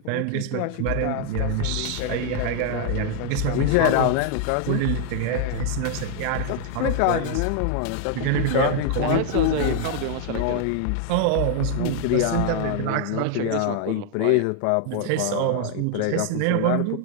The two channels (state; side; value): different; both; correlation 0.00